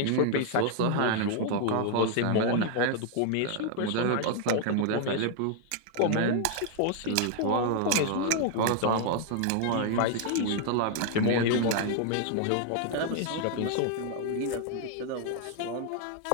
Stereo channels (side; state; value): both; different; correlation 0.00